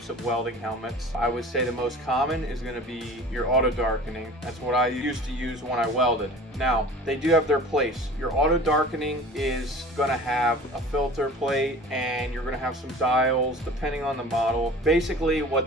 of welding helmets. I would say the most common is going to be your auto darkening. That's what I used to use when I welded. Now, they do have their place. Your auto darkening is going to have a filter plate and you're going to have some dials depending on the model. Basically,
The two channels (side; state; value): both; normal; correlation 0.41